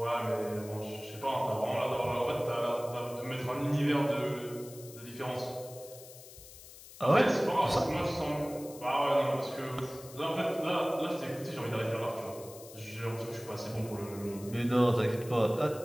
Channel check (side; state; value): left; noise; hiss, 17 dB below the sound